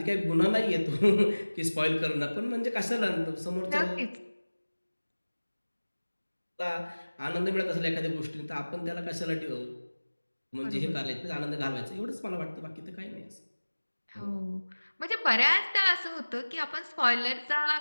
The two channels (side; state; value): both; inverted; correlation -1.00